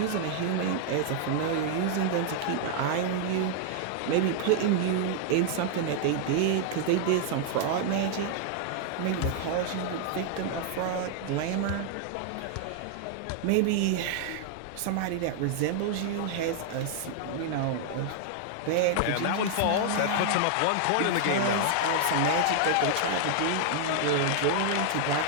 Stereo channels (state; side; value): different; both; correlation 0.00